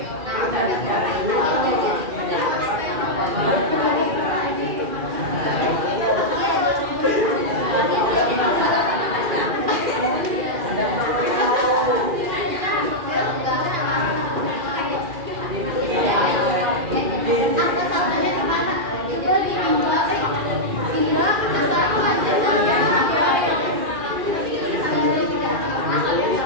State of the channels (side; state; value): left; late; 2.4 ms